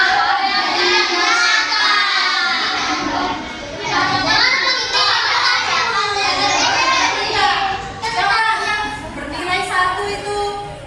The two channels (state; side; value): identical; both; correlation 1.00